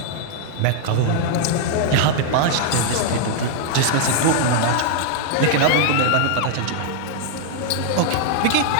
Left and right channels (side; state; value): both; different; correlation 0.00